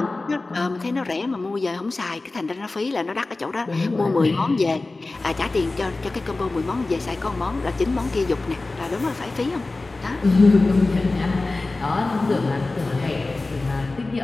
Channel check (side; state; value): right; quieter; 3.3 dB